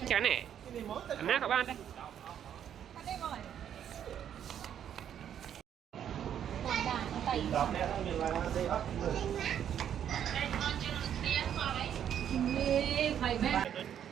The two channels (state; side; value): quieter; left; 9.5 dB